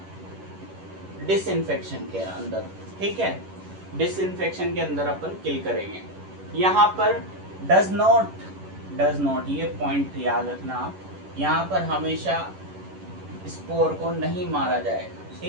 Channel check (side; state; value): left; late; 11 ms